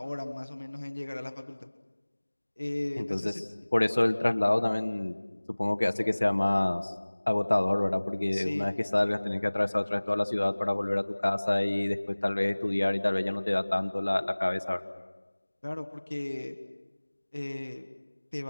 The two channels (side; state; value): both; inverted; correlation -1.00